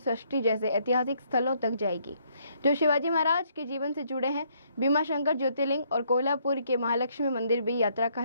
जैसे ऐतिहासिक स्थलों तक जाएगी, जो शिवाजी महाराज के जीवन से जुड़े हैं। भीमाशंकर ज्योतिर्लिंग और कोल्हापुर के महालक्ष्मी मंदिर भी यात्रा का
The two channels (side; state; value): both; inverted; correlation -0.69